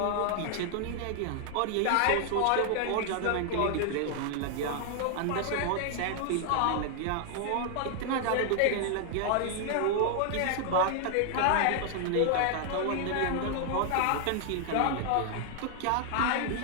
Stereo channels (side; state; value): both; different; correlation 0.00